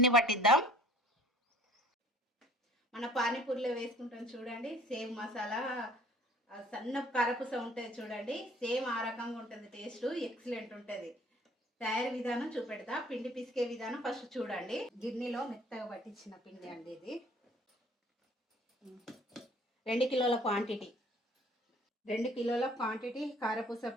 పట్టిద్దాం. మన పానీపూరిలో వేసుకుంటాం చూడండి, సేమ్ మసాలా సన్న కారపూస ఉంటుంది చూడండి, సేమ్ ఆ రకంగా ఉంటుంది. టేస్ట్ ఎక్సలెంట్ ఉంటుంది. తయారీ విధానం చూపెడతా. పిండి పిసికే విధానం ఫస్ట్ చూడండి. గిన్నెలో మెత్తగా పట్టించిన పిండి అండి ఇది. 2 కిలోల క్వాంటిటీ. 2 కిలోల క్వాంటిటీ కారపూస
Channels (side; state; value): both; normal; correlation 0.53